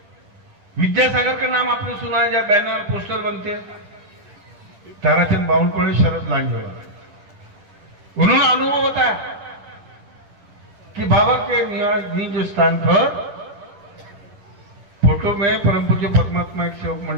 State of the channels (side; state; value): left; late; 10 ms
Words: विद्यासागर का नाम आपने सुना है, जब बैनर पोस्टर बनते हैं, ताराचंद बावनकुळे, शरद लांजोड़ा, उन्होंने अनुभव बताया कि बाबा के निज स्थान पर फोटो में परम पूज्य पद्मात्मा एक सेवक